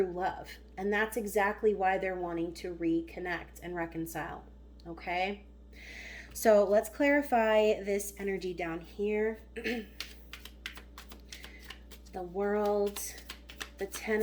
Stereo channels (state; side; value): identical; both; correlation 1.00